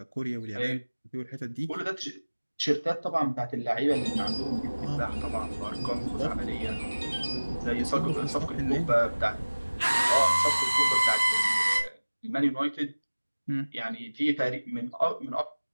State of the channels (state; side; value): inverted; both; correlation -1.00